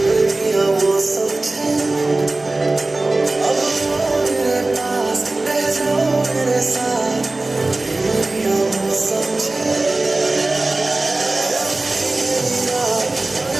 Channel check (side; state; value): left; quieter; 3.0 dB